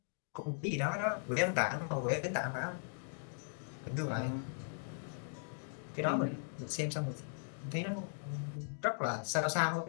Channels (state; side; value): silent; right; digital silence